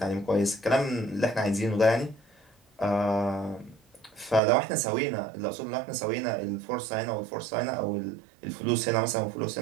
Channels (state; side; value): drops out; left; at 4.4 s